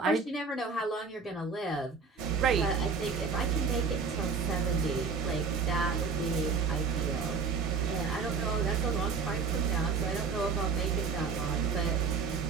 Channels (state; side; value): quieter; left; 5.1 dB